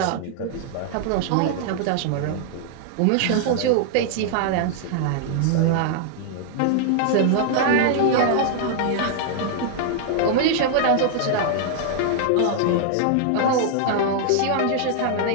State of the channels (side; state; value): both; different; correlation -0.01